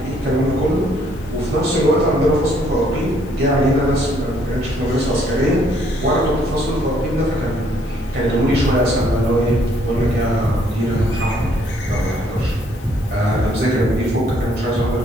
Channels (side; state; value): left; noise; hiss, 27 dB below the sound